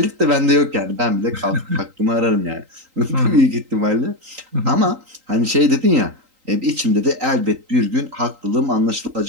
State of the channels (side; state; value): left; late; 3.8 ms